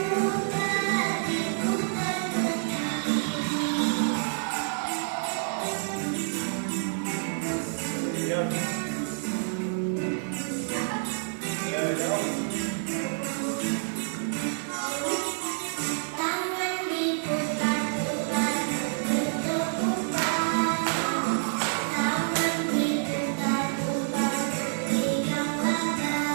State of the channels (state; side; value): silent; left; digital silence